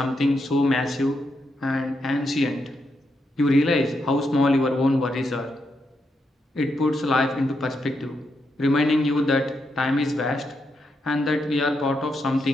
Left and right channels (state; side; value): normal; both; correlation 0.82